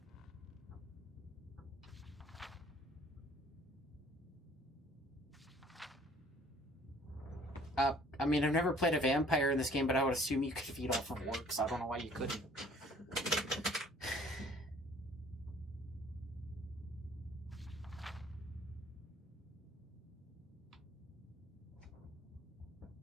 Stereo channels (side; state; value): both; normal; correlation 0.56